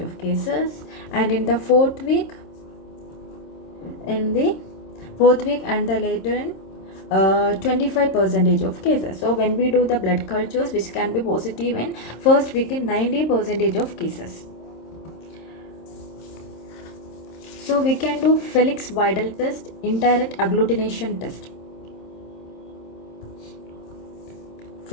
of cases, and in the fourth week and the later in 25% of cases. So when we do the blood cultures, which can be positive in first week in 90% of cases. So we can do Felix Vidal test, indirect agglutination test.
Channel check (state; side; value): late; right; 26 ms